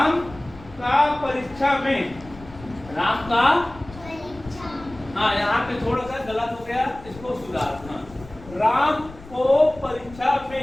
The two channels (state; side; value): noise; left; rumble, 18 dB below the sound